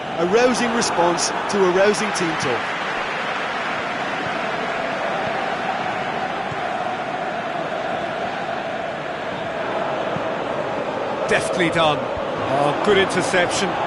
a rousing response to a rousing team talk. Deftly done. Oh, good interception.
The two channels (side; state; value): both; identical; correlation 1.00